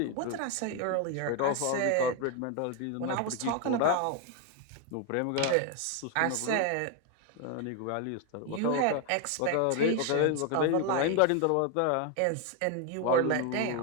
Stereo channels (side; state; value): both; different; correlation 0.01